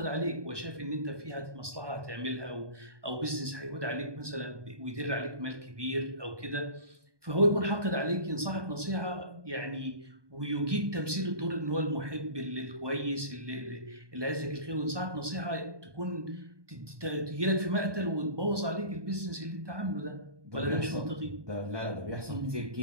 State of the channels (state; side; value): late; left; 1.2 ms